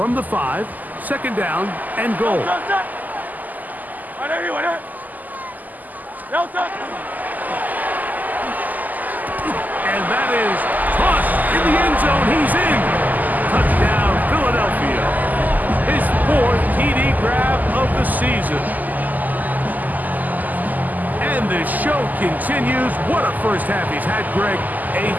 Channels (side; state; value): left; late; 0.082 ms